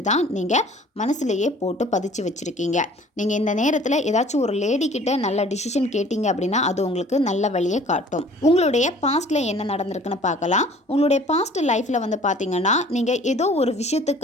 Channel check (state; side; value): normal; both; correlation 0.50